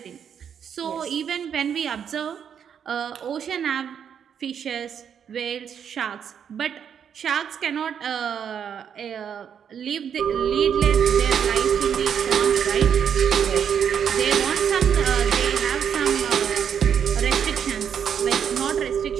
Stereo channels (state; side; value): quieter; left; 8.0 dB